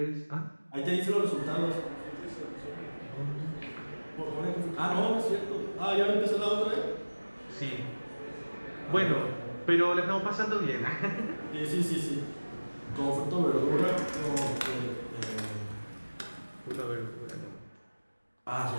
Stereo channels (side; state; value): both; inverted; correlation -1.00